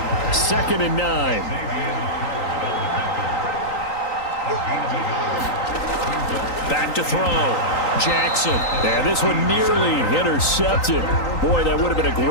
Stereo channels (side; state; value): right; late; 3.9 ms